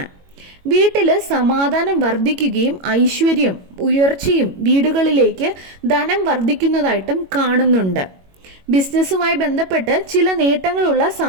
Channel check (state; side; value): late; left; 21 ms